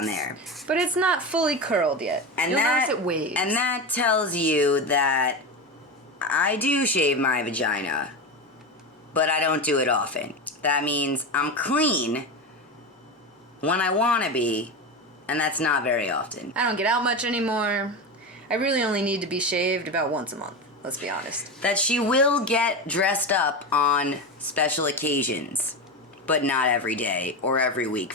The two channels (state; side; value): normal; both; correlation 0.20